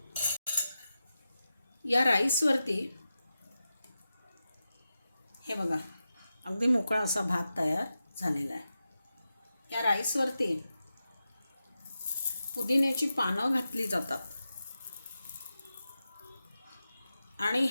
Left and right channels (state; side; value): inverted; both; correlation -0.91